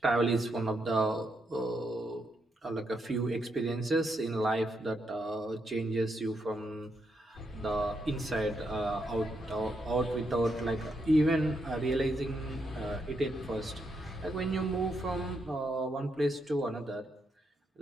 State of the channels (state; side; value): normal; both; correlation 0.80